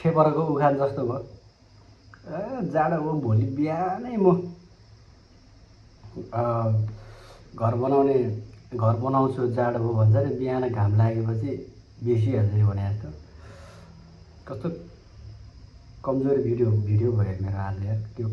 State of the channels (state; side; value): identical; both; correlation 1.00